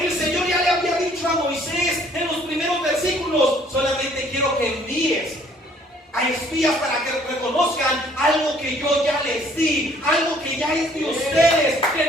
Señor ya le había dicho a Moisés en los primeros versículos, solamente quiero que envíes a espías para que reconozcan algo que yo ya les di, algo que ya es de ustedes,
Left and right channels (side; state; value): both; normal; correlation 0.60